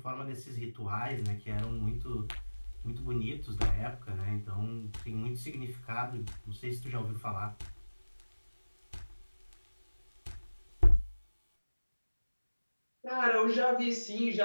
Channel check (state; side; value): inverted; both; correlation -1.00